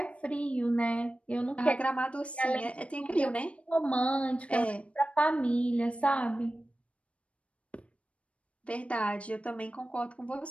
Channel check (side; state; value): right; late; 0.062 ms